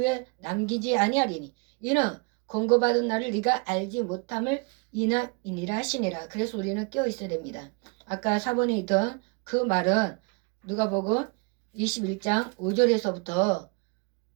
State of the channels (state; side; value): quieter; left; 32.3 dB